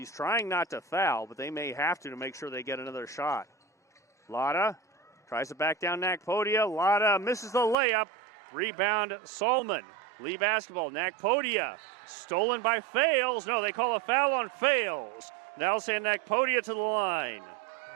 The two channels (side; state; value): left; drops out; at 7.8 s